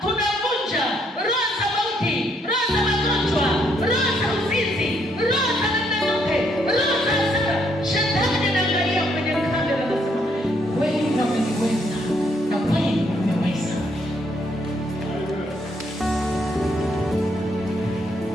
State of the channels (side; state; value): both; normal; correlation 0.71